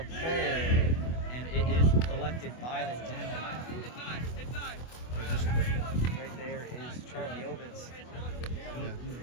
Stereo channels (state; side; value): late; right; 24 ms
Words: poll, and it is collected by the Dhill. Just right there is Charlie Obitz. Moved